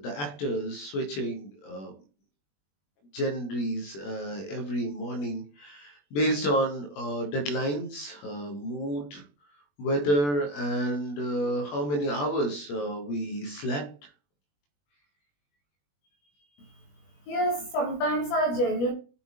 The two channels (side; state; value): right; late; 21 ms